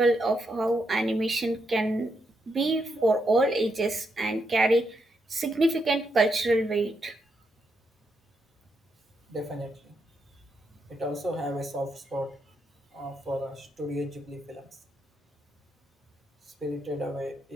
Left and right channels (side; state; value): both; normal; correlation 0.81